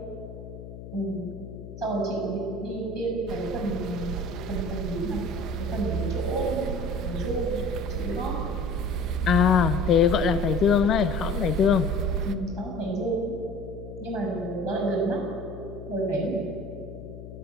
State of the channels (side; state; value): left; noise; hum, 13 dB below the sound